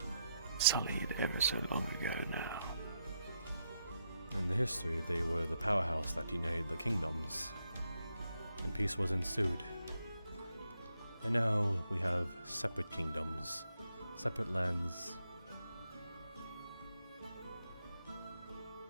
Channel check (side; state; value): both; inverted; correlation -0.80